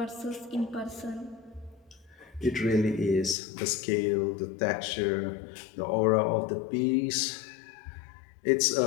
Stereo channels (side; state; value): right; drops out; at 3.4 s